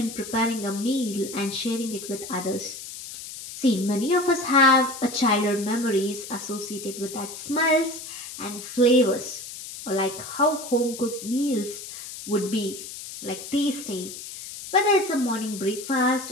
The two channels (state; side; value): noise; left; hiss, 11 dB below the sound